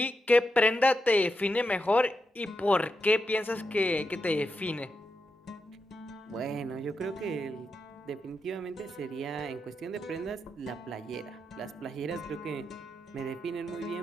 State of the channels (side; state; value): both; normal; correlation 0.86